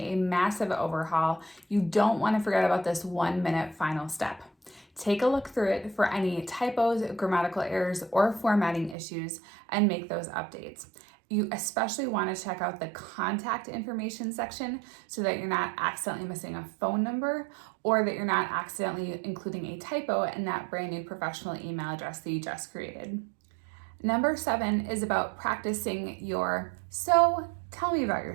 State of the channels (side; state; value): left; drops out; at 9.0 s